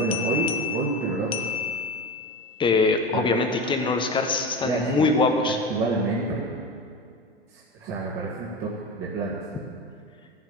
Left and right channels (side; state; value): both; normal; correlation 0.26